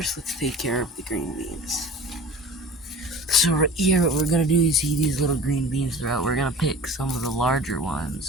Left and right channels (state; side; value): normal; both; correlation 0.40